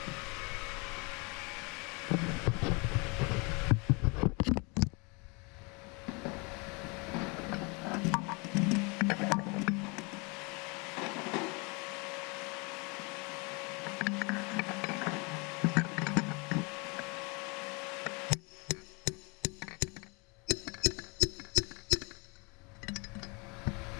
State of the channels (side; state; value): right; quieter; 29.9 dB